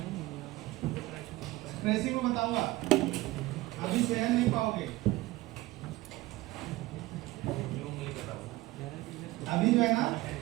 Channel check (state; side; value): quieter; left; 18.7 dB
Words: ट्रेसिंग में बताऊंगा, अभी सहन नहीं पाओगे। अभी जो है ना